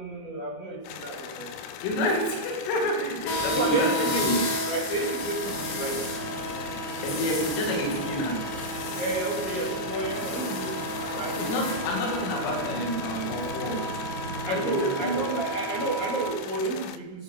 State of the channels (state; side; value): late; right; 27 ms